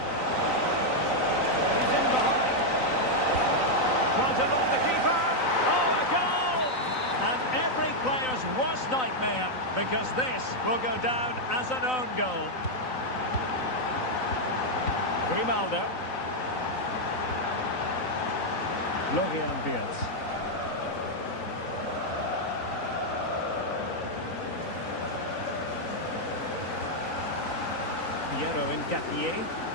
He's in behind. Trying to lock the keeper. Oh, a goal! And every player's worst nightmare, because this will go down as an own goal. Grimaldo. Florian Beards. Piero Ngapié.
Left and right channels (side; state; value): right; late; 3.9 ms